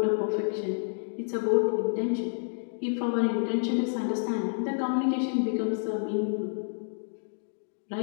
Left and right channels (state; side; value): silent; right; digital silence